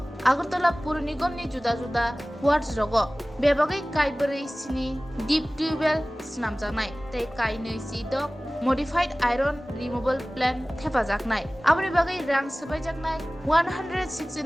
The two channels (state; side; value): normal; both; correlation 0.98